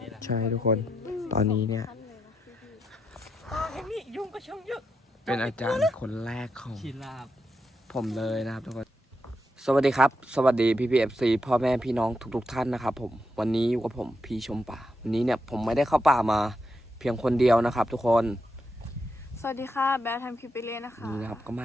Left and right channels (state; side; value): normal; both; correlation 0.83